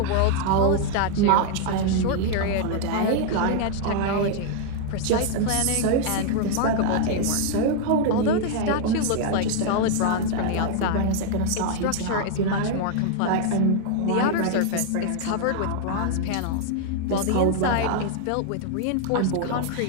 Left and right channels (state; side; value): different; both; correlation 0.00